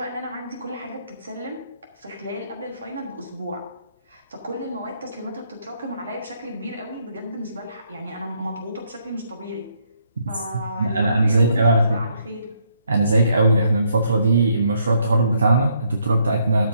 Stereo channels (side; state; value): both; inverted; correlation -0.72